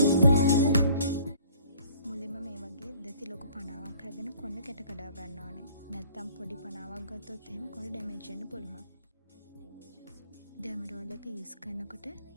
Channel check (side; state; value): both; inverted; correlation -0.54